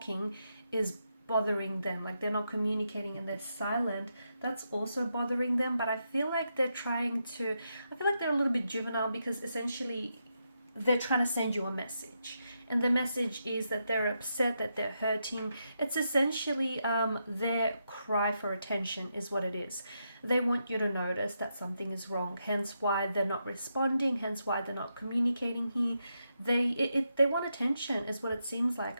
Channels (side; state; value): both; inverted; correlation -0.83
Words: is bothering them. Like they're not communicating and they're silent, that's also bothering them. But I feel like they're a little bit juvenile, because essentially they're trying to send you a message. And the message is that they're upset, that they're hurting. It's essentially their cry for attention is what it is. They want you to notice that something is wrong, hence why they're not responding, hence why they're not communicating here. they want attention is what it seems